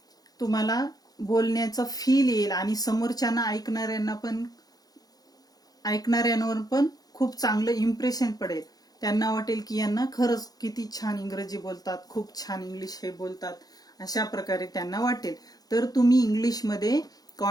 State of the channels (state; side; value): late; right; 0.19 ms